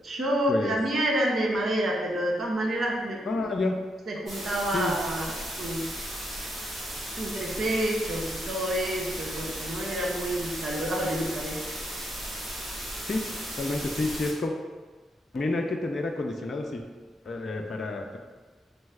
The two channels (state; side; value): normal; both; correlation 0.78